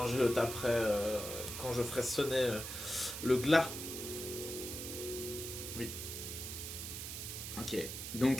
je le taperai, quand je ferai sonner le glas. Ok.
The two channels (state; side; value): noise; right; hiss, 7 dB below the sound